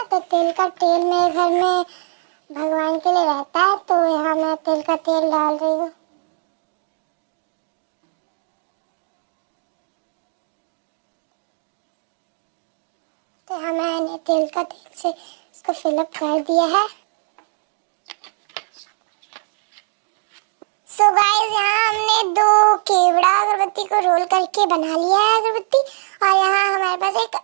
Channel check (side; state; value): left; silent; 62 dB below the other